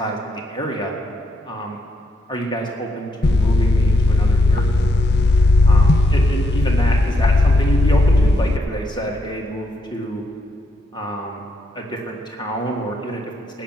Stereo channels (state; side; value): normal; both; correlation 0.80